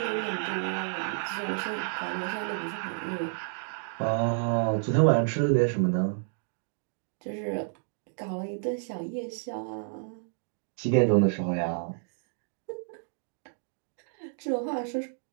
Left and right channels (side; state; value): left; silent; digital silence